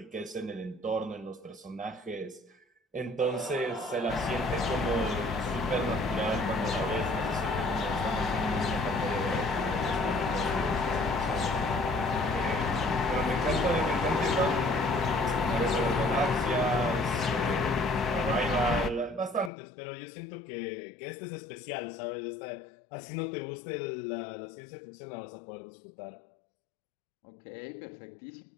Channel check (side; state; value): right; drops out; at 19.5 s